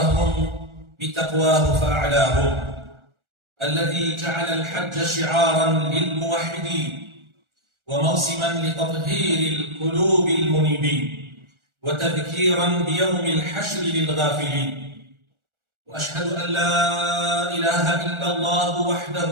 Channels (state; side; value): late; left; 1.4 ms